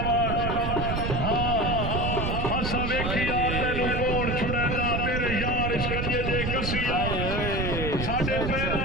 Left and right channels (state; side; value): noise; right; rumble, 2 dB below the sound